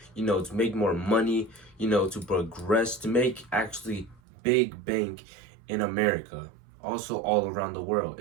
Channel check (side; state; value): left; drops out; at 4.2 s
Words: to make more money, to progress, to make actually big bank in America. Also all around the world.